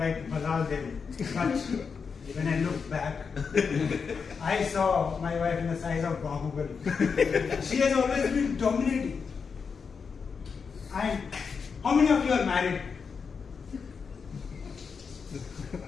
Balal Devi. But when I looked back, I saw my wife in the size of Bahubali. She has always been dominating. And how many of you are married?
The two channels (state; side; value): quieter; right; 5.7 dB